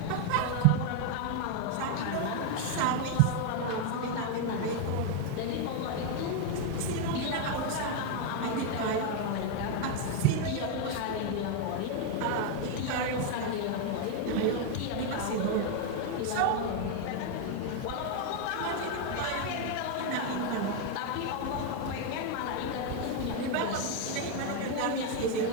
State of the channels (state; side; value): different; both; correlation 0.01